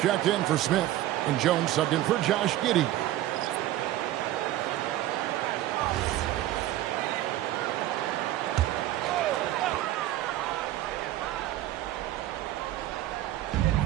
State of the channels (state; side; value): quieter; left; 14.3 dB